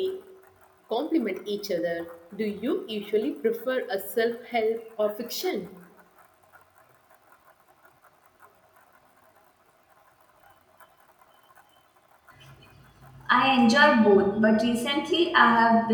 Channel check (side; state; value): both; identical; correlation 1.00